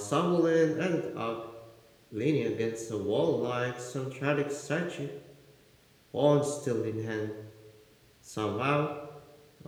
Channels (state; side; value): identical; both; correlation 1.00